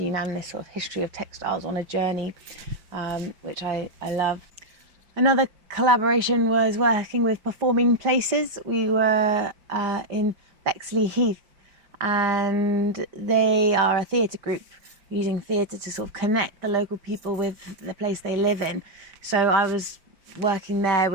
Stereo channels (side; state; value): left; late; 5.0 ms